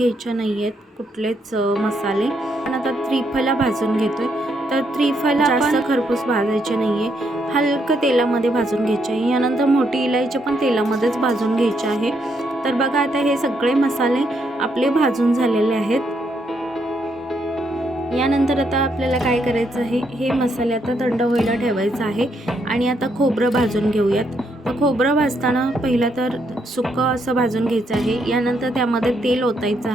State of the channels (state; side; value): normal; both; correlation 0.76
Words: नाही आहेत कुठलेच मसाले. पण आता त्रिफला भाजून घेतोय. तर त्रिफला जास्त खरपूस भाजायचे नाही आहे, हलकं तेलामध्ये भाजून घ्यायचे आहे. यानंतर मोठी इलायची पण तेलामध्येच भाजून घ्यायची आहे. तर बघा आता हे सगळे मसाले आपले भाजून झालेले आहेत. यानंतर आता आपल्याला काय करायचं आहे, हे मसाले आता थंड व्हायला ठेवायचं आहे. आणि आता खोबरं भाजून घेऊयात. तर खोबरं भाजताना पहिलं तर सुकं असं भाजून घ्यायचं आहे. यानंतर त्यामध्ये तेल ओतायचं